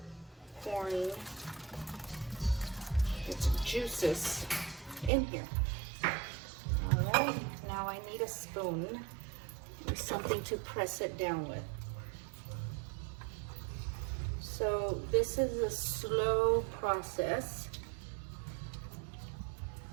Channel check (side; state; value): left; drops out; at 5.1 s